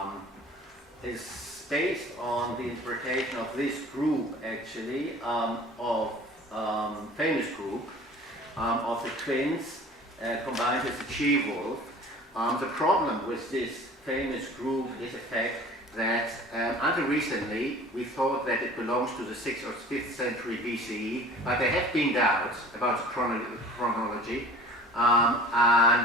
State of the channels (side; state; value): both; normal; correlation 0.45